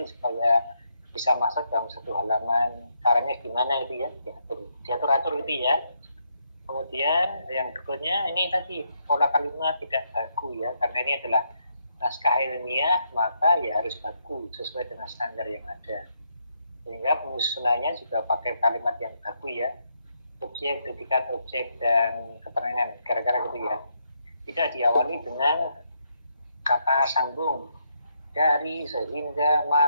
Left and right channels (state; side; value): inverted; both; correlation -0.77